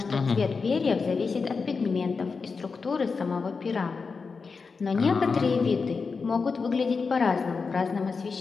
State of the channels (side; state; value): right; quieter; 4.8 dB